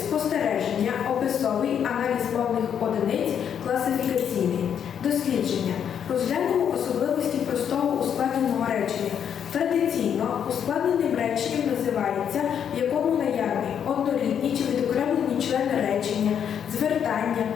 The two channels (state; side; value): quieter; right; 8.4 dB